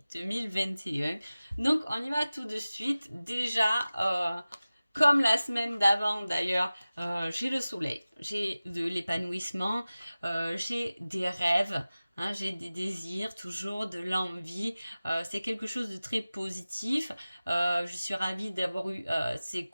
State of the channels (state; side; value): inverted; both; correlation -0.97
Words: 2021. Donc, on y va tout de suite. Déjà, comme la semaine d'avant d'ailleurs, j'ai le soleil, j'ai de l'épanouissement, j'ai des rêves. Hein, j'ai des désirs, toujours de l'envie. C'est quelque chose de très positif. Je suis ravie d'avoir eu ces